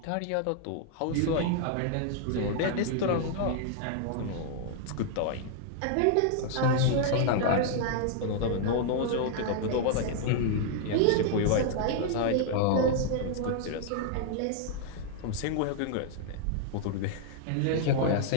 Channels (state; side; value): different; both; correlation 0.00